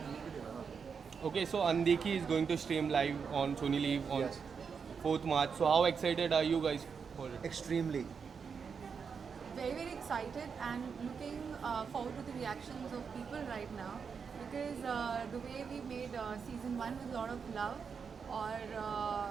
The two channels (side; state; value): left; quieter; 6.1 dB